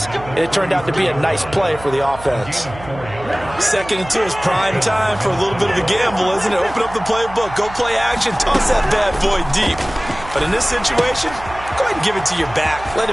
and it turned out to be a nice play for the offense. 2nd and 2 is prime time for a little bit of a gamble, isn't it? Open up the playbook, go play action, toss that bad boy deep. But in this situation, go ahead and give it to your back. Let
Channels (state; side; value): noise; right; hum, 16 dB below the sound